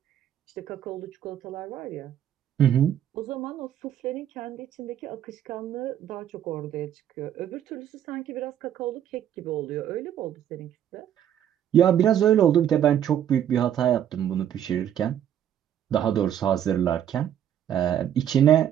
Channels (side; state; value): left; quieter; 10.2 dB